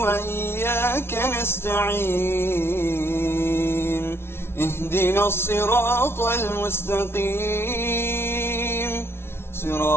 نستعين اهدنا الصراط المستقيم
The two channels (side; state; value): right; late; 0.12 ms